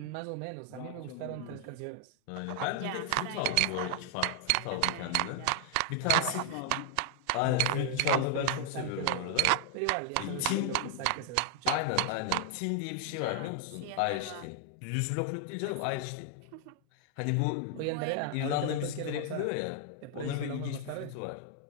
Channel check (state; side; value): different; both; correlation 0.00